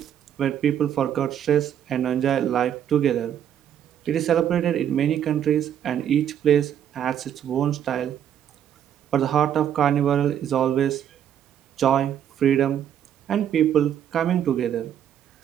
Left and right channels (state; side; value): quieter; left; 9.7 dB